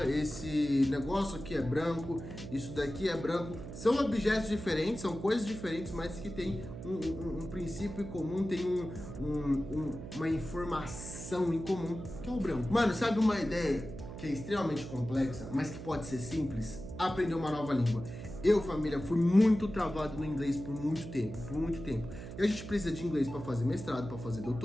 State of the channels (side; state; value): right; noise; hum, 10 dB below the sound